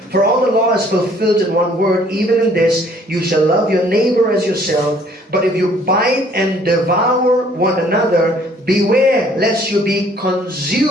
For all the law is fulfilled in one word, even in this, you shall love your neighbor as yourself. But if you bite and devour one another, beware lest you be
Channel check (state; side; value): normal; both; correlation 0.59